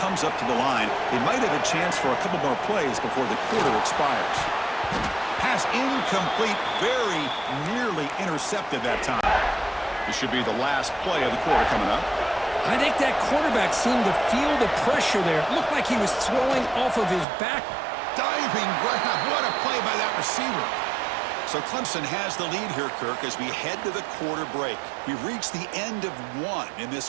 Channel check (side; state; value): left; drops out; at 17.2 s